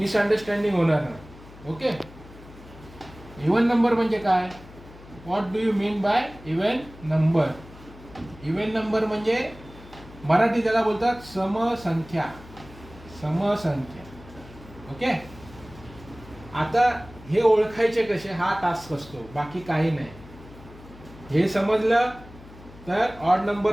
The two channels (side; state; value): left; noise; hum, 19 dB below the sound